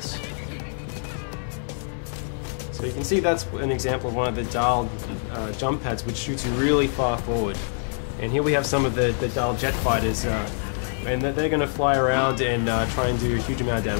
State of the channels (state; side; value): silent; right; 62 dB below the other